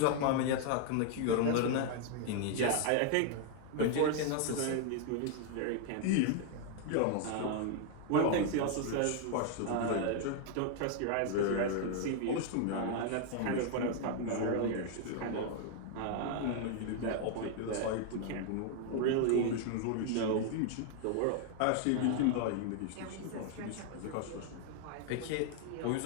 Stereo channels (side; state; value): both; different; correlation 0.00